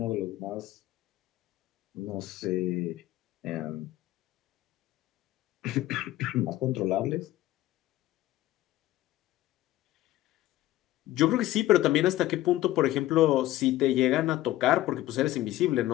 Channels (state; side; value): quieter; right; 15.5 dB